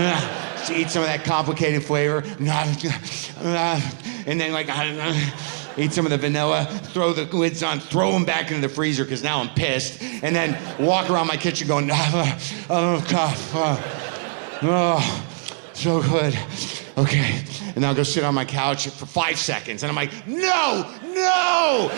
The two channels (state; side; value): silent; left; 64 dB below the other